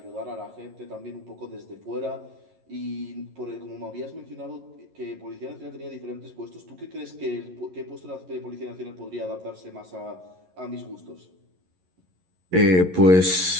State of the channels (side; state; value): left; late; 11 ms